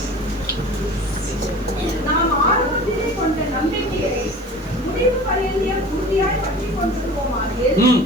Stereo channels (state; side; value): noise; right; hiss, 27 dB below the sound